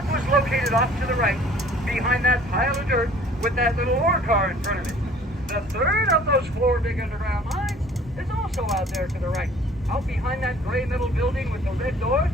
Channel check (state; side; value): normal; both; correlation 0.52